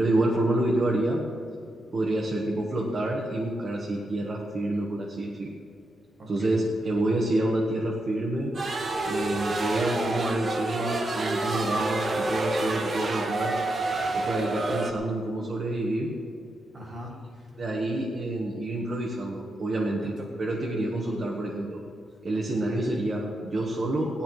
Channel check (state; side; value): normal; both; correlation 0.84